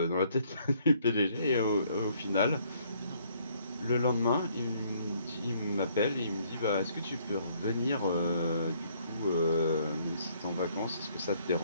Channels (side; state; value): both; inverted; correlation -0.65